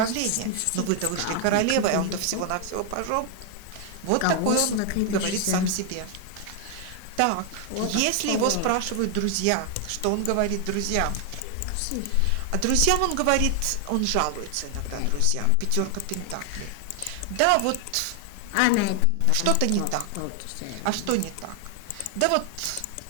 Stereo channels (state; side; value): different; both; correlation 0.00